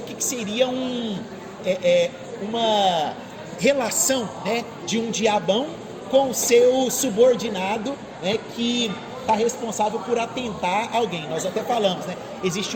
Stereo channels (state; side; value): identical; both; correlation 1.00